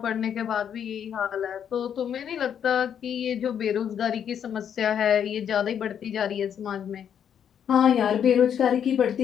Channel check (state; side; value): quieter; right; 8.6 dB